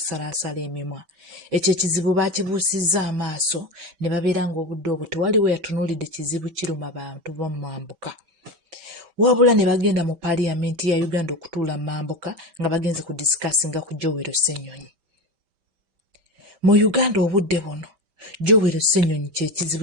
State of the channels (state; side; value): late; left; 5.1 ms